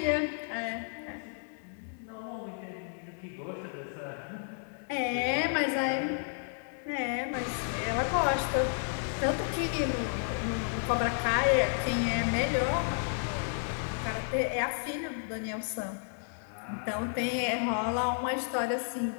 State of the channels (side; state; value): right; silent; digital silence